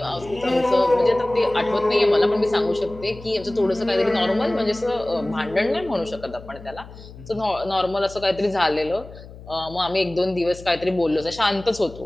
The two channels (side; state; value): left; noise; hum, 17 dB below the sound